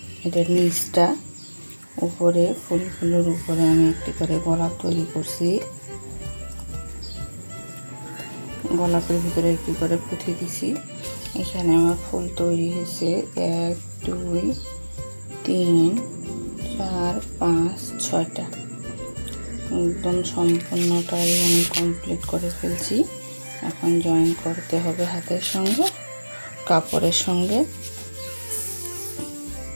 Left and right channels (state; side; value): inverted; both; correlation -1.00